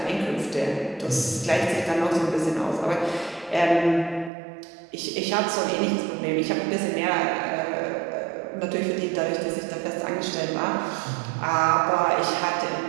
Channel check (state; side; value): drops out; left; at 4.3 s